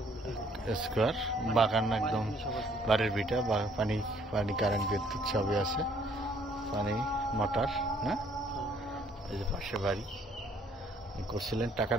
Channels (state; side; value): normal; both; correlation 0.63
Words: স্কোয়ার বাগান, একদম বাড়ির ভিটা, পানি কারেন্ট বিদ্যুৎ সবই আছে, পানি মোটর না। এই যে পাশে বাড়ি করছিলেন,